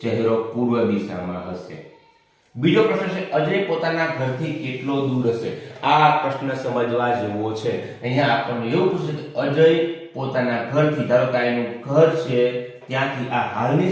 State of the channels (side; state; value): both; identical; correlation 1.00